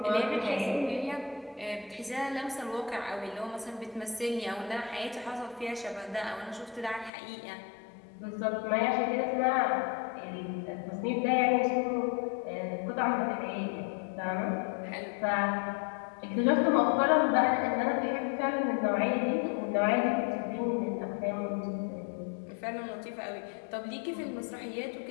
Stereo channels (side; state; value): right; drops out; at 7.1 s